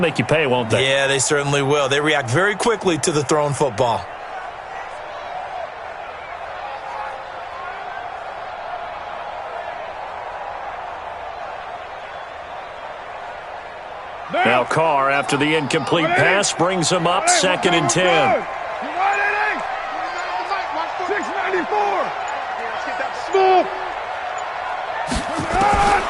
you pay, won't they? Yeah, they certainly will. They react very quickly to the thrown football. Now Carr, after the incomplete pass, brings him up 2nd and 10. 694.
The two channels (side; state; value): both; identical; correlation 1.00